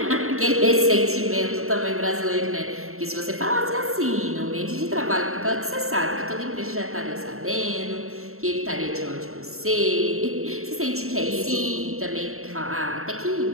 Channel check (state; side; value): late; left; 0.63 ms